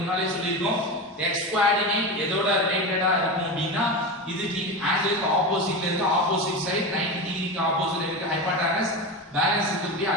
முன்னாலே சொல்லிருக்கோம் x கோஆர்டினேட் எதோட ரிலேட்டடா இருக்கும் அப்படினா இதுக்கு ஆங்கிளுக்கு ஆப்போசிட்ல இருக்கு. ஆப்போசிட் சைடு 90 டிகிரிக்கு ஆப்போசிட்ல இருக்கு ஹைபோடெனஸ். பேலன்ஸ் இருக்கு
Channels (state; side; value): normal; both; correlation 0.22